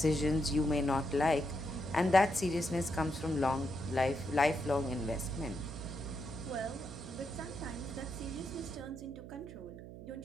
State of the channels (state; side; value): noise; right; hum, 13 dB below the sound